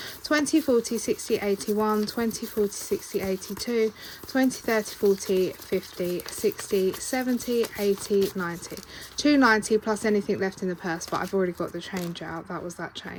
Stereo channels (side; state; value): both; identical; correlation 1.00